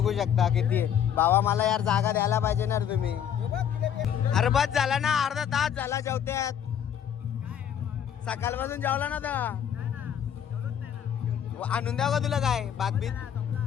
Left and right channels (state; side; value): quieter; right; 9.0 dB